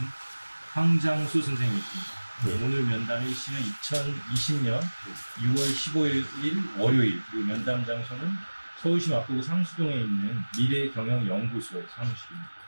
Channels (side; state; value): both; inverted; correlation -1.00